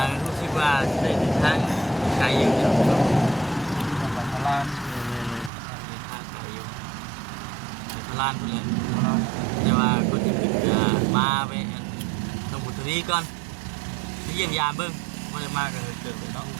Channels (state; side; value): drops out; left; at 5.5 s